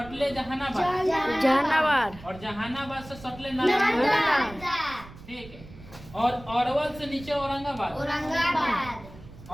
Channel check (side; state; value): right; noise; rumble, 18 dB below the sound